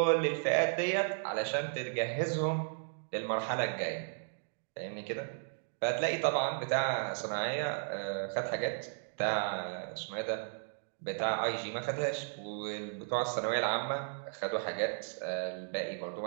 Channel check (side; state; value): left; silent; digital silence